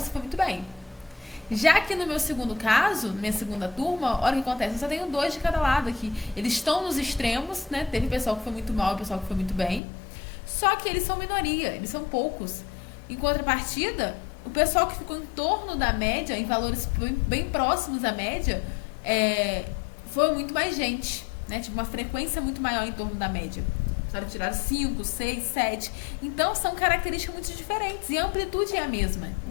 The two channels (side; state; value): right; drops out; at 9.8 s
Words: foi muito bem. Já que no meu segundo caso, minha segunda turma, olha o que acontece, eu só tenho 2 de cada lado aqui. Eles estão nos extremos, né? Teve pessoal que foi muito mal e pessoal que foi muito bem. Só que eles são minoria, eles são poucos. Em contrapartida, o pessoal que ficou em torno da média, em valores bem próximos à média, foi muito mais gente, né? Tipo, uma frequência muito maior em torno da média. Tiraram 5, 6, 7. Então, são características muito diferentes. E a amplitude é a mesma.